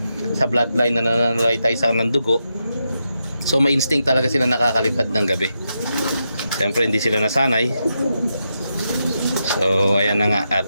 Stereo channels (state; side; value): inverted; both; correlation -0.85